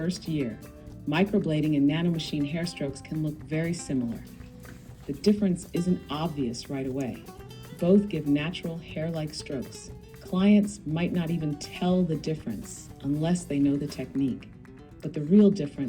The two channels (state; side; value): identical; both; correlation 1.00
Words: year, microblading and Nano Machine Hair Strokes can look very similar. The difference isn't obvious right away. Both give natural hair-like strokes. Clients might not even tell the difference unless they know the technique. But the real